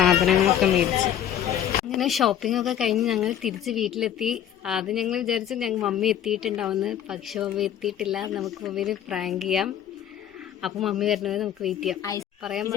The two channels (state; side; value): quieter; right; 10.2 dB